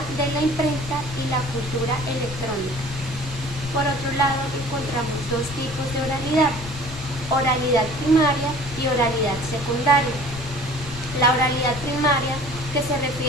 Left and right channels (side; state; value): left; noise; rumble, 12 dB below the sound